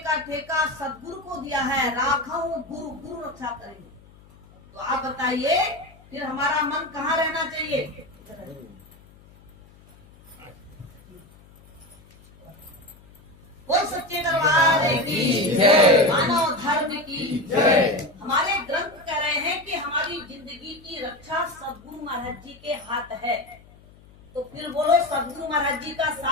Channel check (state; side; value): noise; left; hum, 25 dB below the sound